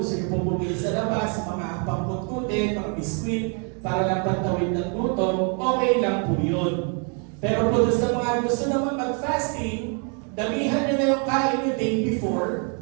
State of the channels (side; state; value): left; quieter; 39.5 dB